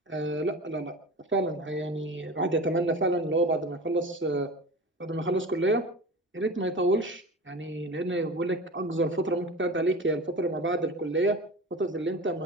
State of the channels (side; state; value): both; normal; correlation 0.33